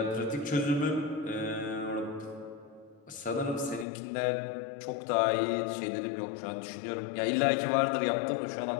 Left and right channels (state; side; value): drops out; right; at 3.9 s